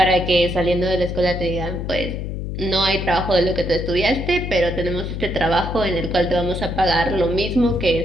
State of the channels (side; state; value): left; noise; hum, 5 dB below the sound